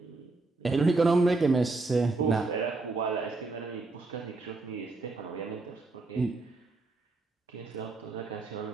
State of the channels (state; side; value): quieter; left; 3.4 dB